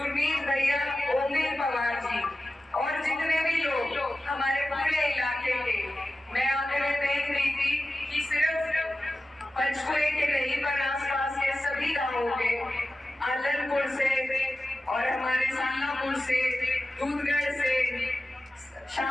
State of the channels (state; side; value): normal; both; correlation 0.94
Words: भैया, ओमवीर पवार जी, और जितने भी लोग हमारे पूरे इलाके के। मैं आगे में देख रही थी कि सिर्फ पंचकुले के नहीं पर आसपास के सभी गांवों के, आलनपुर से और हमारे सालापुर से, दूधगढ़ से,